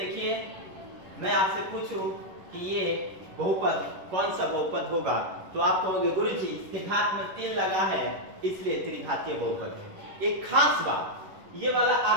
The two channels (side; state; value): left; late; 11 ms